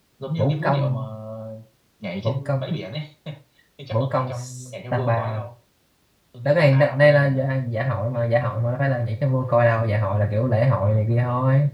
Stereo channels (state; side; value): identical; both; correlation 1.00